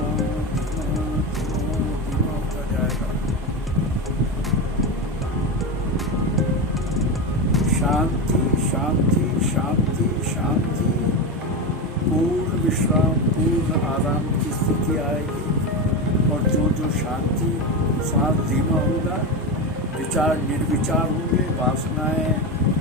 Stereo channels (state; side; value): normal; both; correlation 0.17